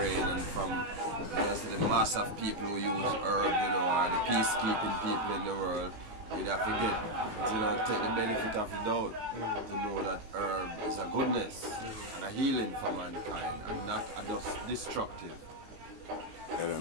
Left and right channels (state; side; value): late; left; 18 ms